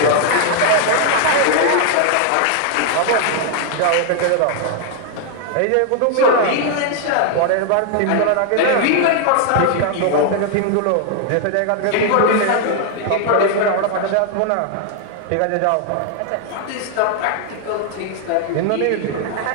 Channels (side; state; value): both; different; correlation 0.00